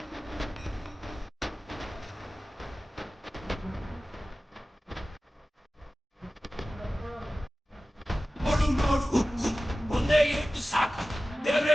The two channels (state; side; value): normal; both; correlation 0.96